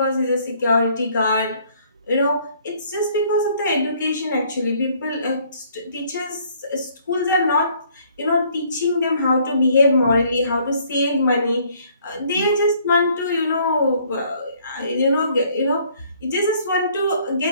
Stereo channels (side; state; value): both; inverted; correlation -0.62